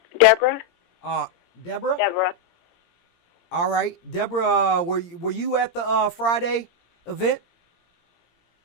Deborah. Deborah. Deborah. All right, Deborah. Were you at the Friday event?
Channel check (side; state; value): right; late; 17 ms